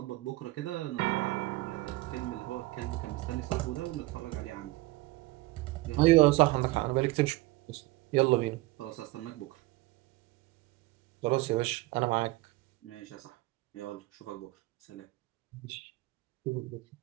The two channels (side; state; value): left; quieter; 19.9 dB